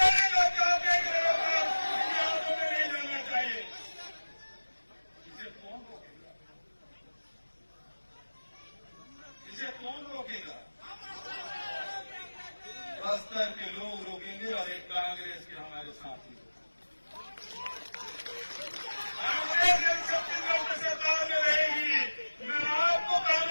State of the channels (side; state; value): both; inverted; correlation -1.00